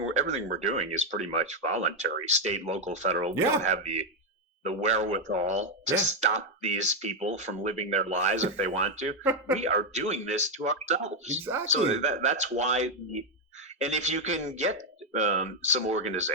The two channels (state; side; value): normal; both; correlation 0.04